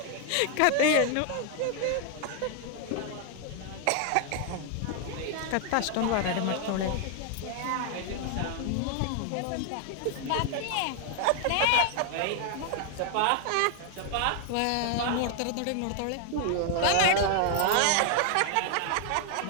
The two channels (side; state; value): both; different; correlation 0.00